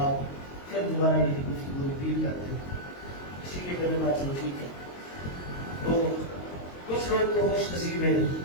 پھر دوبارہ یہ گفتگو ریپیٹ کرتے ہیں. اسی لیے میرے بات چلو ٹھیک ہے. تو کچھ لوگ تو خوش نصیب ہیں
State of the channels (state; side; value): late; right; 22 ms